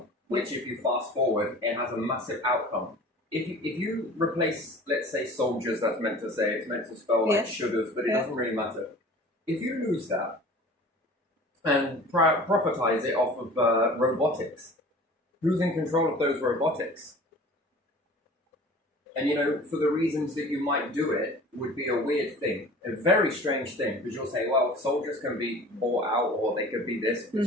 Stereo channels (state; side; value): normal; both; correlation 0.43